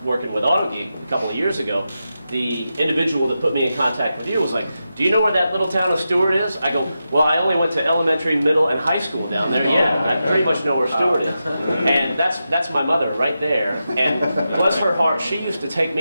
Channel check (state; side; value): inverted; both; correlation -0.89